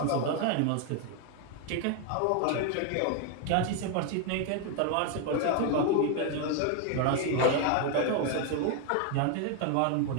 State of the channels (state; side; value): different; both; correlation 0.01